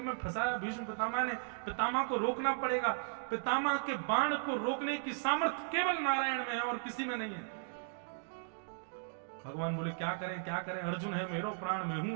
में फंसाया भीष्म पितामह ने। पितामह को रोकना पड़ेगा। पितामह के बाण को रोकने की सामर्थ्य केवल नारायण में है और किसी में नहीं है। भगवान बोले, क्या करें क्या करें, अर्जुन है मेरो प्राण, मैं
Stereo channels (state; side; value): silent; left; digital silence